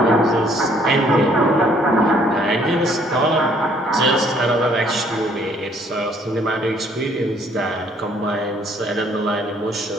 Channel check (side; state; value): both; normal; correlation 0.63